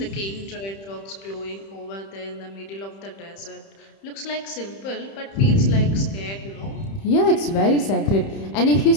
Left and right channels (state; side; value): late; right; 31 ms